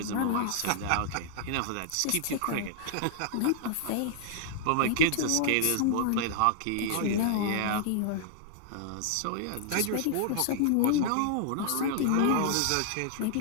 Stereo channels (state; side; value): different; both; correlation -0.01